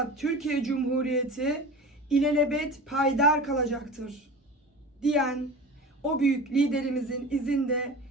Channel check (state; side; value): normal; both; correlation 0.34